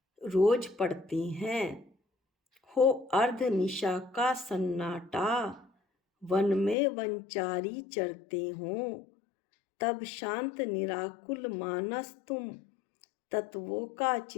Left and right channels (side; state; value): right; drops out; at 6.8 s